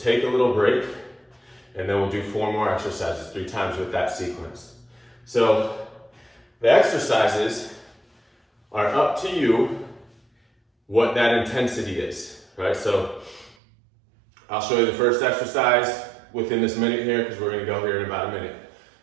a little break, and then we'll do 4 more exercises 3 times with that sequence. So the exercises are up to you what that intensity is, right? So I'll show you the first exercise within this minute here because we're going to go here in about a minute.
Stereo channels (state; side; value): drops out; left; at 13.6 s